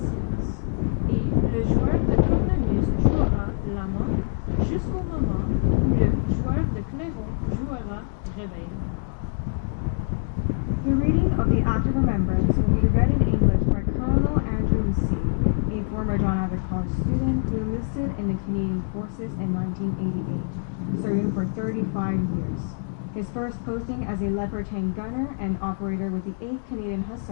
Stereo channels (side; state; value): right; silent; digital silence